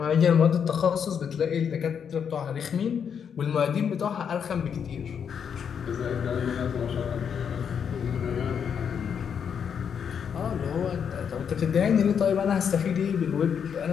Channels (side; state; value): right; quieter; 7.4 dB